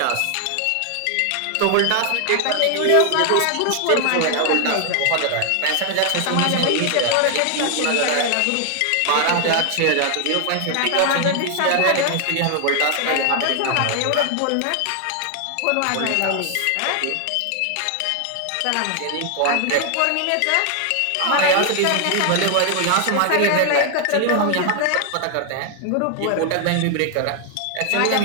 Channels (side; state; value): both; different; correlation 0.00